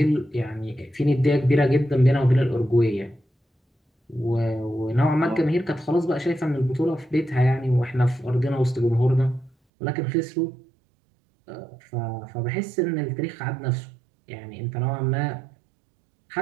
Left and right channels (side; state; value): left; drops out; at 9.5 s